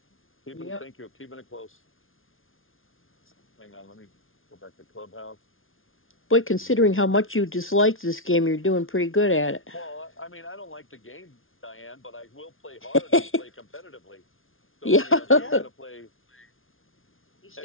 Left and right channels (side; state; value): right; late; 0.59 ms